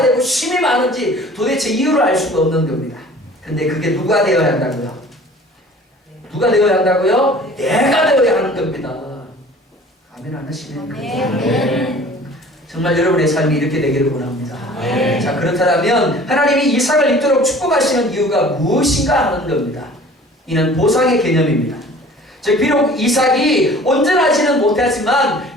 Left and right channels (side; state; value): both; normal; correlation 0.47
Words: 되고 힘이 많은지 도대체 이유를 알 수가 없는 겁니다. 근데 그게 누가 되어야 한다고요? 누가 되어야 한다고요? 내가 되어야 하는 겁니다. 아멘 안 하시네요. 정말 여러분의 삶이 이렇게 되기를 원합니다. 자, 그렇다면 하나님이 이삭을 입도록 축복하시는 이유가 무엇인가 하는 겁니다. 이는 보상의 개념입니다. 즉 비록 이삭이 온전하지는 못하지만